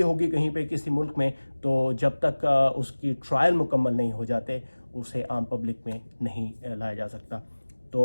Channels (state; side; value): inverted; both; correlation -1.00